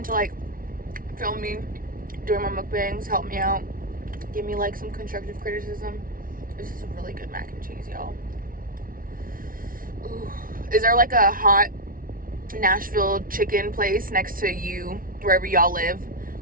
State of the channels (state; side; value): late; left; 0.41 ms